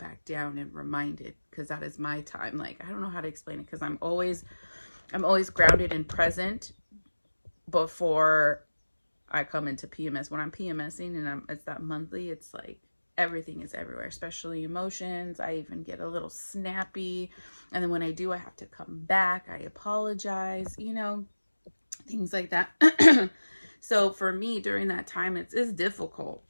down and reminded, because that is my time. Like, I don't know how to explain it, because I'm always grounded and present before I come into PMS. When I'm PMSing and it's that monthly, it's like everything is everywhere, especially emotions. I even get a little snappy, and then when I do, I have to come back, I apologize, you know, things like that. So for me during that time, it's difficult.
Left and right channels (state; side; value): inverted; both; correlation -1.00